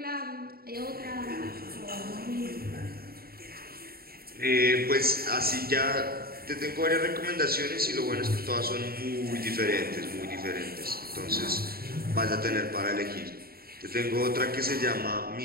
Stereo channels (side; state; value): left; late; 0.44 ms